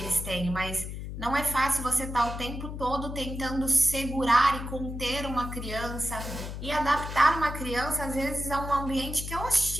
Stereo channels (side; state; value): left; noise; hum, 7 dB below the sound